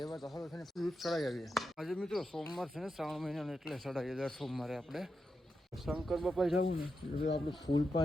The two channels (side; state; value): both; normal; correlation 0.87